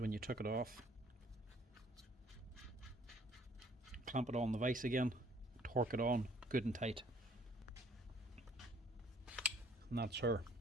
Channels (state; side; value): normal; both; correlation 0.59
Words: you took it off. Clamp it on the vise again, torque it on good and tight, and that's her.